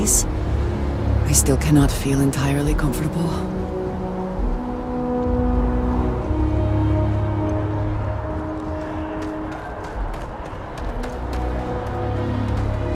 I still cannot feel entirely comfortable.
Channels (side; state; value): both; identical; correlation 1.00